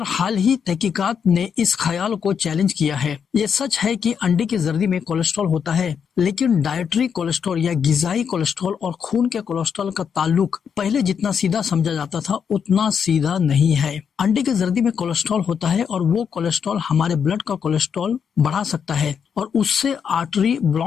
हाल ही तहकीकात ने इस ख्याल को चैलेंज किया है। ये सच है कि अंडे की जर्दी में कोलेस्ट्रॉल होता है, लेकिन डाइटरी कोलेस्ट्रॉल या गिजाई कोलेस्ट्रॉल और खून के कोलेस्ट्रॉल का ताल्लुक पहले जितना सीधा समझा जाता था उतना सीधा नहीं है। अंडे की जर्दी में कोलेस्ट्रॉल होता है और वो कोलेस्ट्रॉल हमारे ब्लड का कोलेस्ट्रॉल बढ़ा सकता है और उससे आर्टरी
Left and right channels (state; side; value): quieter; right; 7.1 dB